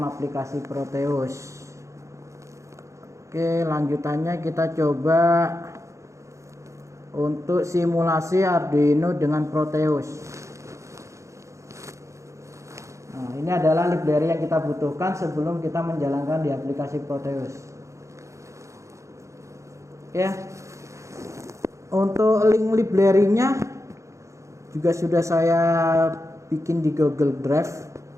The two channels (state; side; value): late; left; 0.15 ms